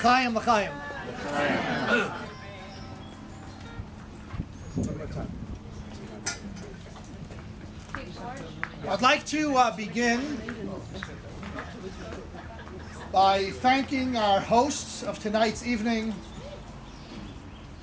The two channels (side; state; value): both; identical; correlation 1.00